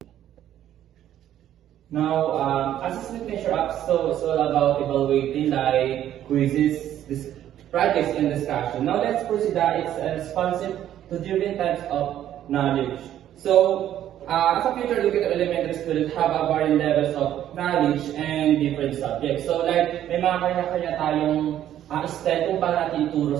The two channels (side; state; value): left; quieter; 11.5 dB